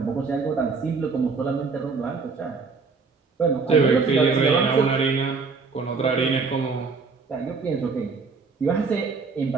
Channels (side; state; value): left; quieter; 4.6 dB